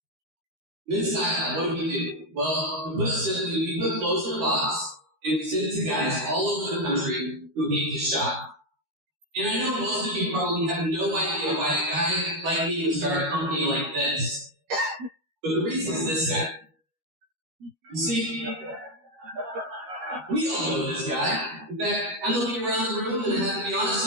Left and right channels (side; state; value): left; late; 13 ms